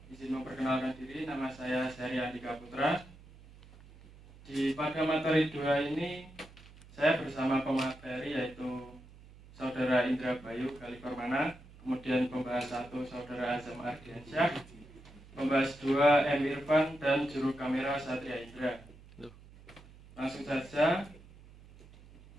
memperkenalkan diri. Nama saya Syahri Andika Putra. Pada materi 2 ini saya bersama pemateri yaitu Saudara Indra Bayu Kaliformana, kemudian pembahas 1 Saudara Azam Ardiansyah, pembahas 2 M. Irfan, dan juru kamera Satria Indra. Langsung saja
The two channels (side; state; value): right; noise; hum, 21 dB below the sound